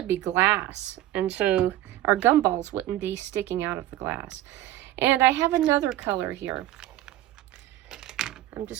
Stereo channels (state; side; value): quieter; left; 14.2 dB